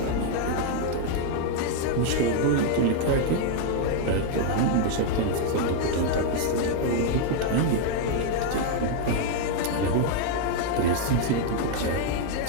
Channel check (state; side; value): different; both; correlation 0.00